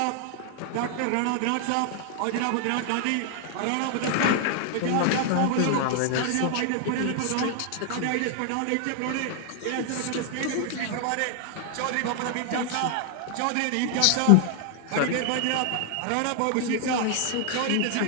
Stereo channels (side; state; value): both; different; correlation 0.00